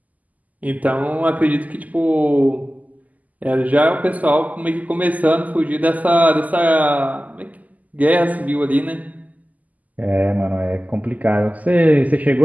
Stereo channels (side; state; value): left; late; 0.078 ms